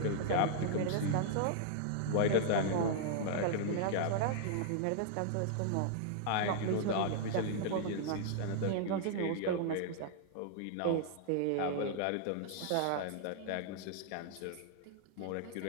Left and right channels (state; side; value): different; both; correlation -0.01